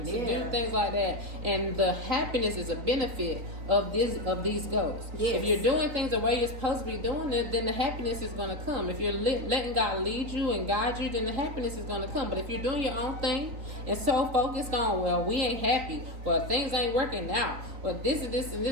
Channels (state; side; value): late; left; 3.9 ms